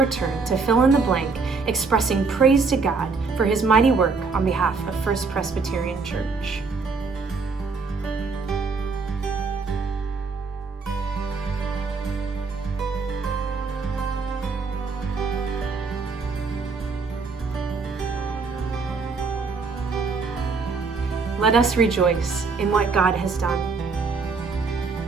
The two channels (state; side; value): quieter; left; 4.5 dB